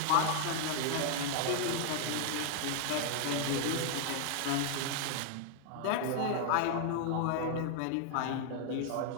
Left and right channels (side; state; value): both; different; correlation 0.00